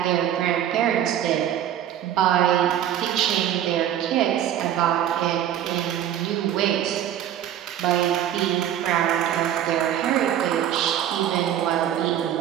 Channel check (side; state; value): left; quieter; 10.9 dB